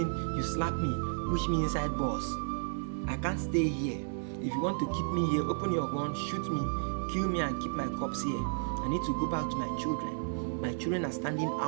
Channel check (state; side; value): silent; left; digital silence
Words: you slap me, push me inside bus. I can't stay here. If you want to keep me here, open your gun, shoot me, kill me and keep my corpse here. I need to go back to my children. My children are standing